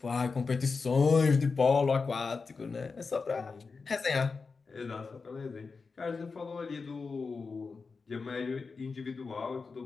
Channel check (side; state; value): right; quieter; 4.6 dB